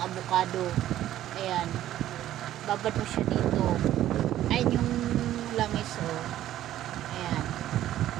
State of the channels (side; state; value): left; quieter; 12.9 dB